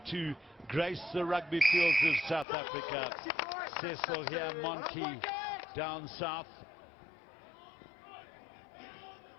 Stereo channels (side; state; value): right; drops out; at 2.5 s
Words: to grace the rugby fields of South Africa. Cecil here, Monty down south.